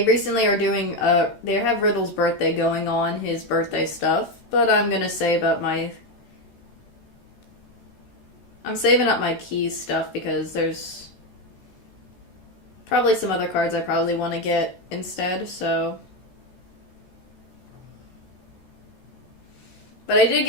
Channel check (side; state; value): right; late; 14 ms